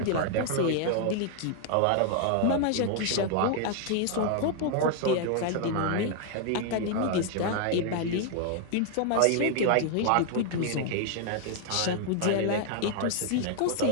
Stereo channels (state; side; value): different; both; correlation 0.00